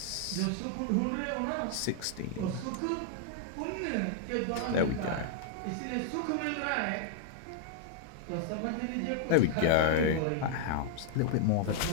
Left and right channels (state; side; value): different; both; correlation -0.01